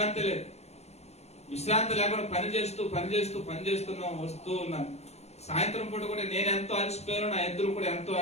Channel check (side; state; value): right; late; 0.31 ms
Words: లేదు, విశ్రాంతి లేకుండా పనిచేస్తున్నా వస్తూ ఉన్నాను. సాయంత్రం పూట కూడా నేను ఎంతో అలసిపోయాను, నా ఎద్దులు కూడా ఎంతో